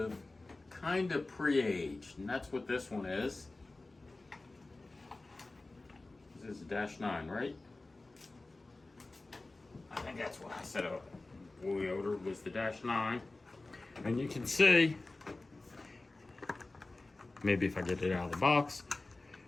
kind of pre-aged, and that's what this one is. This is a Dash-9, right? I think that's what I said we ordered was the Dash-9. And you can see, maybe if I get it out of the box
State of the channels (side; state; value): right; quieter; 3.1 dB